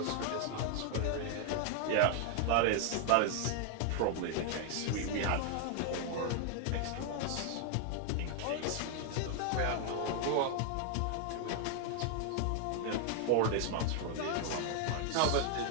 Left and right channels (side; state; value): both; different; correlation 0.00